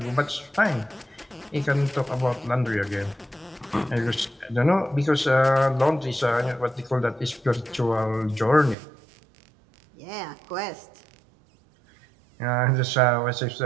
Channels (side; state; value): left; drops out; at 8.8 s